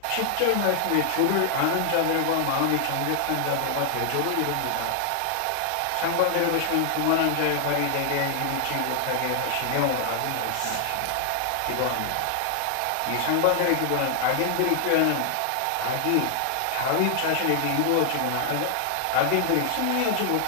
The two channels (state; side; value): different; both; correlation 0.00